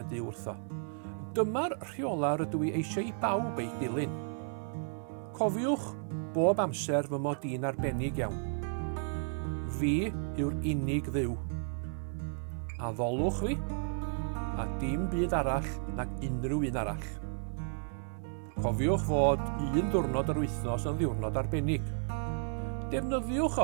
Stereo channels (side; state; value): left; silent; digital silence